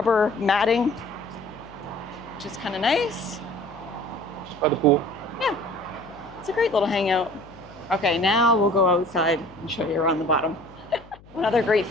matting, which is kind of nice. Just by the pool. Yeah, it's a great little hangout. Okay, now we'll go outside and show you around the bottom. Another great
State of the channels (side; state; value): left; noise; hum, 23 dB below the sound